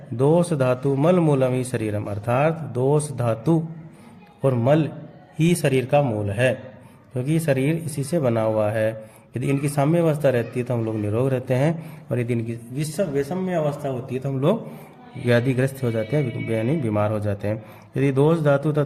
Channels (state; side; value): identical; both; correlation 1.00